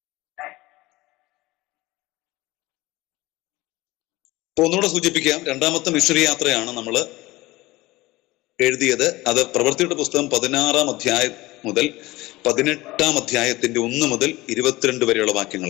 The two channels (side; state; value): right; quieter; 19.7 dB